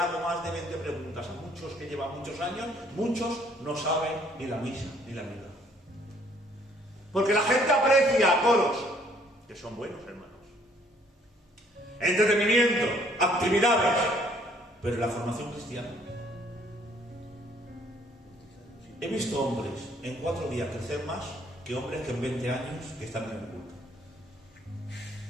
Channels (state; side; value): normal; both; correlation 0.62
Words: más de 20 preguntas a muchos que llevan muchos años, muchos no saben ni la misa ni la misa. Porque la gente aprecia coros, que son buenos, hermanos. Entretenimiento, actividades, pero la formación cristiana. He visto hombres en 4 días crecer más que hombres que en 20 años que están en el culto.